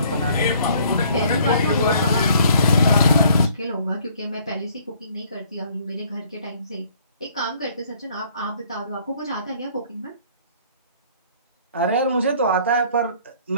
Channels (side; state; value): both; inverted; correlation -0.59